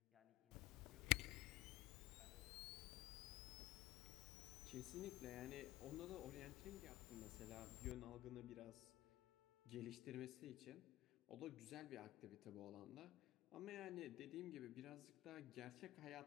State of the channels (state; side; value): quieter; right; 16.6 dB